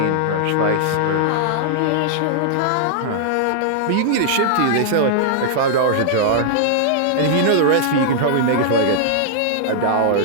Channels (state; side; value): different; both; correlation -0.01